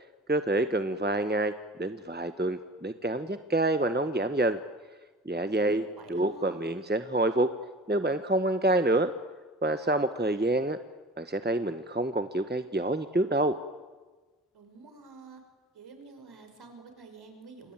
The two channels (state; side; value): normal; both; correlation 0.40